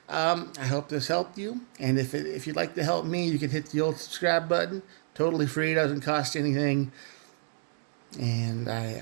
I hope this helped you. And if you'd like to help me, you can hit the old subscribe button. Totally free. Doesn't cost anything. And I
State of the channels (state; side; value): silent; left; digital silence